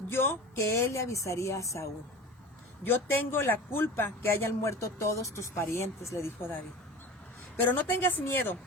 yo que él le avisaría a Saúl. Yo tengo la culpa que hayan muerto todos tus parientes, le dijo David. Pero no tengas miedo,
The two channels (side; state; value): both; normal; correlation 0.35